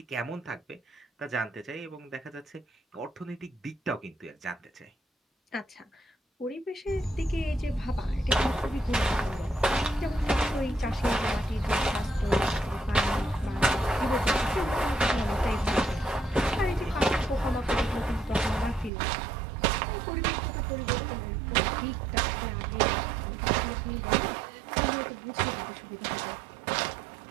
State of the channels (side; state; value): left; drops out; at 18.9 s